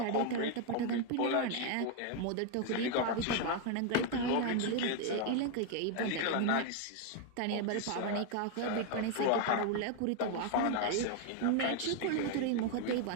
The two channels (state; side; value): different; both; correlation 0.01